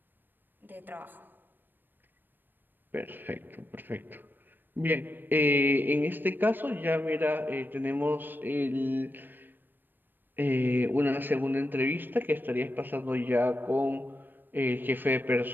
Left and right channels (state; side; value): late; left; 0.093 ms